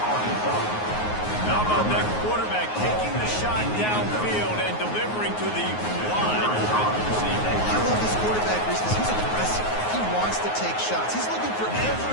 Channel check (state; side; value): late; right; 9.5 ms